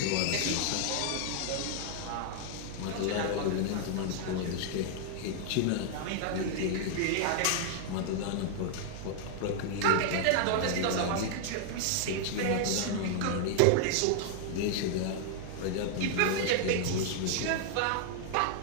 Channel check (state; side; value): different; both; correlation 0.00